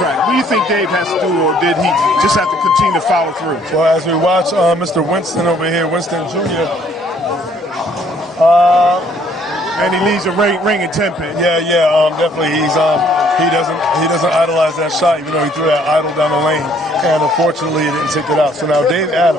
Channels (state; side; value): normal; both; correlation 0.62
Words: What do you think Dave has to do, or did he just have to continue to follow through? Well, as we watch Mr. Winston over here, Winston Jr., and he leaves a ring in 10 pin. Yeah, definitely. He doesn't idolize that shot, even though he threw that idle down the lane, and unfortunately, he didn't take it out. So now Dave